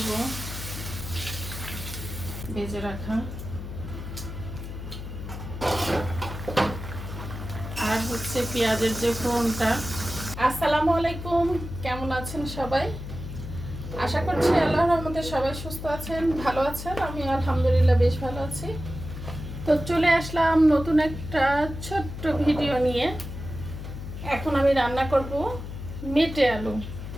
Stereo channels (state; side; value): noise; left; hum, 9 dB below the sound